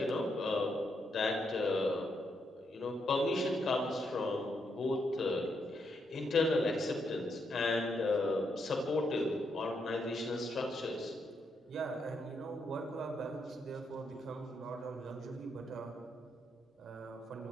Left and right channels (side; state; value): both; normal; correlation 0.79